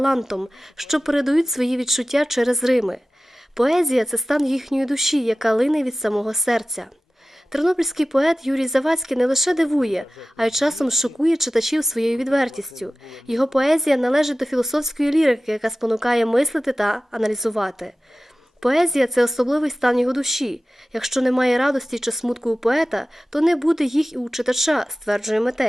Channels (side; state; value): both; normal; correlation 0.96